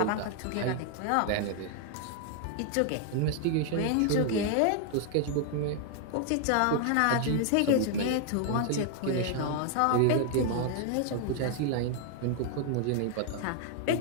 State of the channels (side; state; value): both; different; correlation 0.00